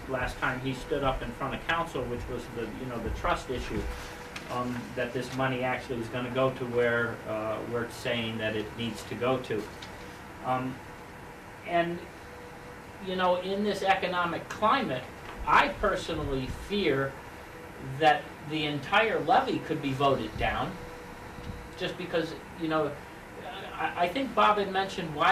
last time he stood up in front of council, which was the trust issue, that this money actually is going to go to where we're saying that it needs to go to. And in this economic climate, I personally fear that the entire levy could be voted down, just because, I think Bob had mentioned,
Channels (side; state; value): both; identical; correlation 1.00